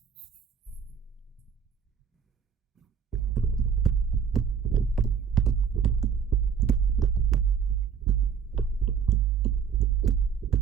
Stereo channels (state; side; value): quieter; left; 6.9 dB